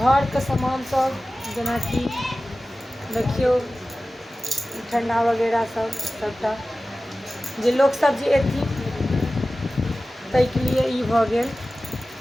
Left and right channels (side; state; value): both; normal; correlation 0.96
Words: के सामान सब, जेना कि देखियो ठंडा वगैरह सब सबटा जे लोग सब जे एथिन ताहि के लिए ई भऽ गेल।